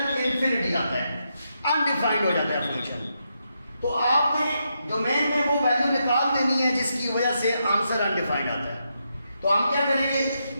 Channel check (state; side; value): inverted; both; correlation -0.82